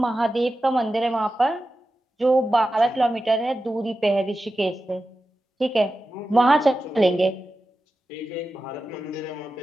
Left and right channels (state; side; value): normal; both; correlation 0.92